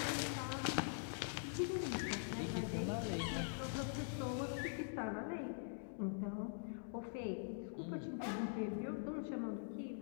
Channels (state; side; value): silent; right; digital silence